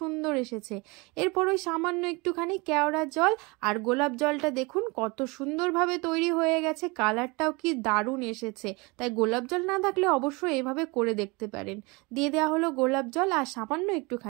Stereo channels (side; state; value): left; quieter; 26.8 dB